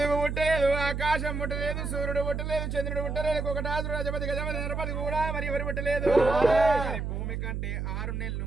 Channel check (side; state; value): right; noise; hum, 3 dB below the sound